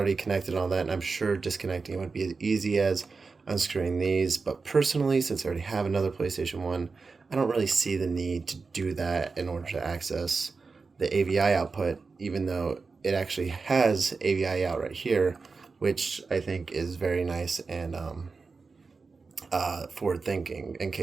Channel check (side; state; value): left; quieter; 4.4 dB